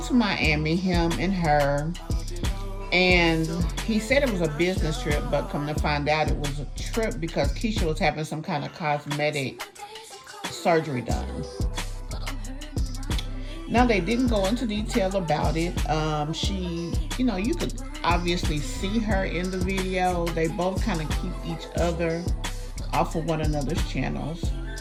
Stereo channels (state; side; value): identical; both; correlation 1.00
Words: to Miami, him and her, and he said it was a business trip, but come to find out it was a trip because Keesha was having some kind of cosmetic surgery done. Now, they didn't go into detail about it. She, you know, you could obviously see her in the video. They both kind of keep each other off of one another's channels.